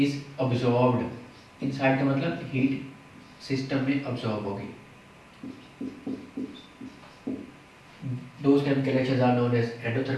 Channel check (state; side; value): identical; both; correlation 1.00